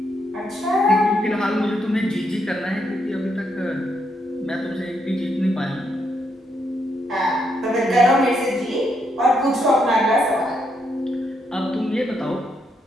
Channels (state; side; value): normal; both; correlation 0.77